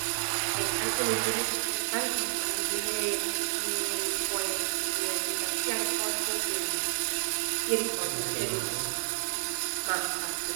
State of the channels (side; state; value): left; silent; digital silence